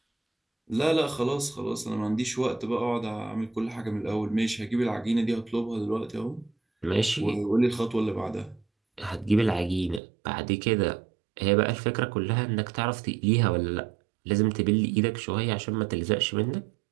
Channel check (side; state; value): left; drops out; at 10.0 s